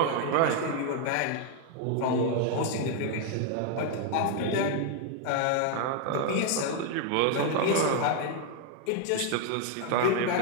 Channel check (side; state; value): both; different; correlation 0.00